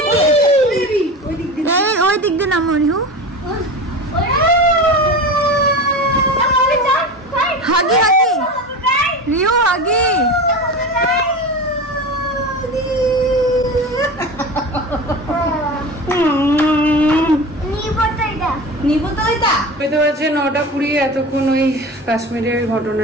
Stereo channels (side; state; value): both; normal; correlation 0.30